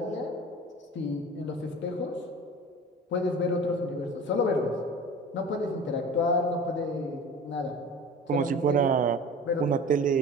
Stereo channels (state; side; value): normal; both; correlation 0.38